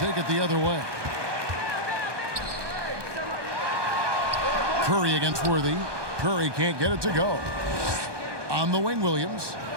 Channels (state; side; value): late; left; 1.2 ms